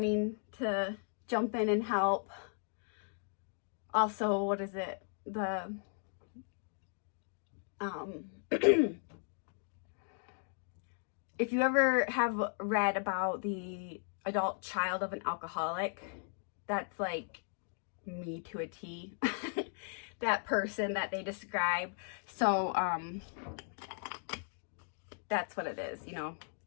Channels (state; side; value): silent; right; 53 dB below the other